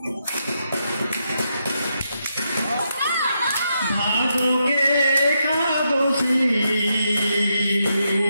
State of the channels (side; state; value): both; inverted; correlation -0.82